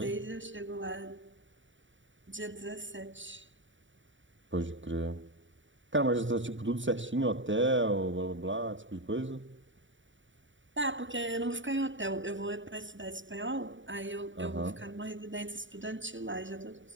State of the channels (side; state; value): left; late; 0.55 ms